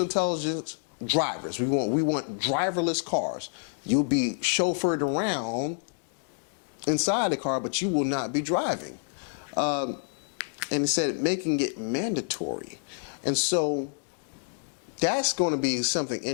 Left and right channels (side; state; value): right; silent; digital silence